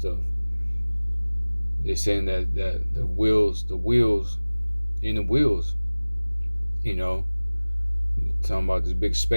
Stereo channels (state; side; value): inverted; both; correlation -1.00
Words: They're saying that the wheels in the wheels, you know, talking about these big